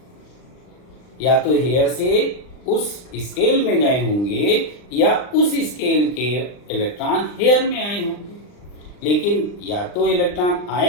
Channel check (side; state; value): right; late; 39 ms